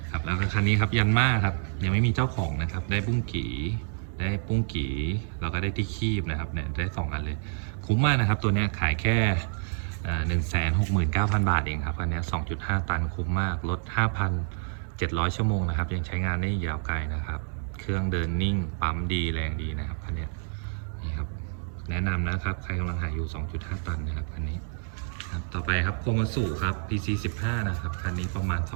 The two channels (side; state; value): left; silent; 59 dB below the other